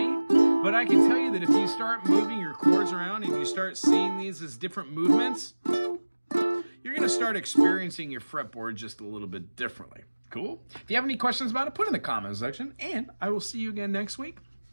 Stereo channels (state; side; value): inverted; both; correlation -1.00